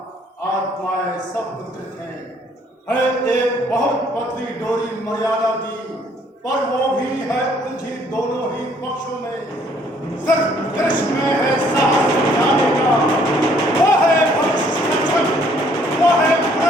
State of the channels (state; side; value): normal; both; correlation 0.63